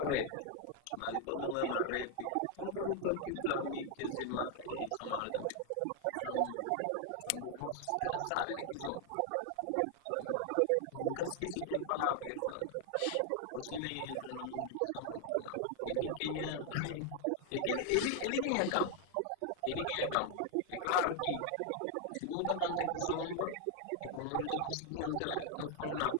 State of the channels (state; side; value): different; both; correlation 0.00